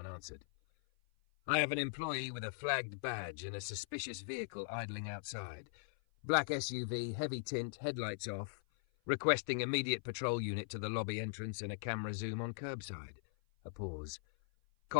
answered. "I have an employee with a flagged badge and a suspicious vehicle idling outside. Black SUV, heavy tint, headlights off. Requesting immediate patrol unit to the lobby entrance and a camera zoom on curbside." A pause.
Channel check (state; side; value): silent; right; 51 dB below the other